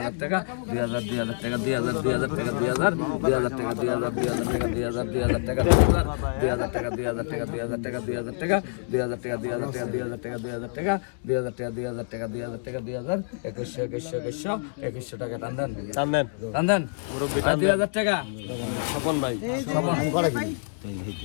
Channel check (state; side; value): silent; right; digital silence